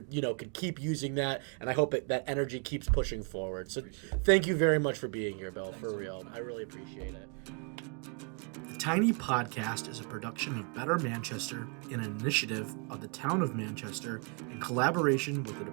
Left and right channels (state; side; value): quieter; left; 36.8 dB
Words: could keep using that, and I hope that energy keeps pushing forward. So thank you very much for being here, Bill. Thanks for real. I really appreciate it. The Tiny Podcast is a production of Better Manchester, an initiative of the Town of Manchester in collaboration with the